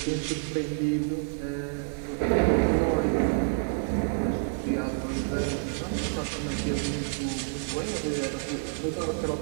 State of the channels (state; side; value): silent; left; 59 dB below the other